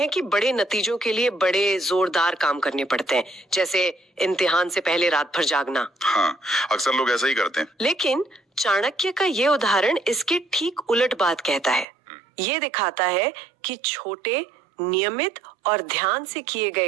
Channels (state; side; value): drops out; left; at 11.9 s